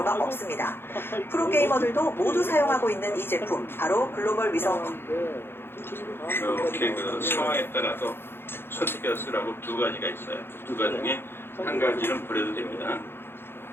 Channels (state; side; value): late; right; 0.11 ms